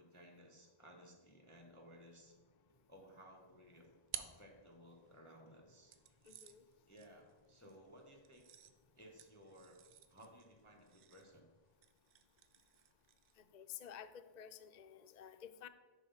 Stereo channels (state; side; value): late; right; 1.9 ms